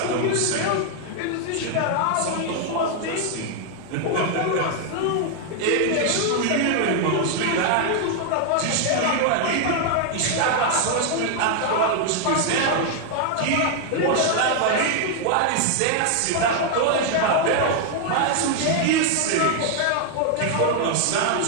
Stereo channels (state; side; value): different; both; correlation 0.00